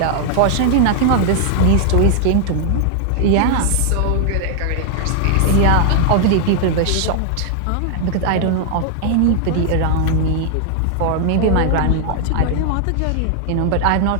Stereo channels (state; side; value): different; both; correlation 0.00